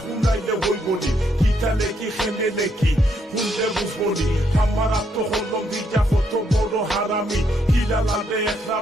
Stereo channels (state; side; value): normal; both; correlation 0.75